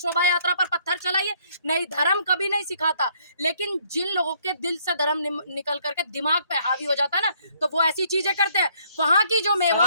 यात्रा पर पत्थर चलाइए? नहीं, धर्म कभी नहीं सिखाता। लेकिन जिन लोगों के दिल से धर्म निकल करके दिमाग पे हावी हो जाता है ना, तो वो ऐसी चीजें करते हैं। वहाँ की जो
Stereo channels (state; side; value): inverted; both; correlation -0.66